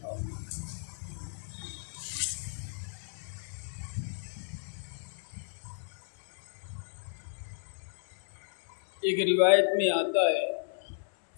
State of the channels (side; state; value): right; silent; digital silence